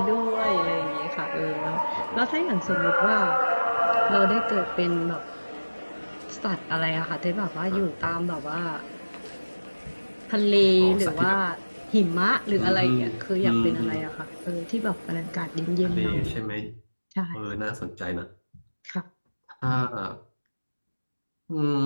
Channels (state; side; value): inverted; both; correlation -1.00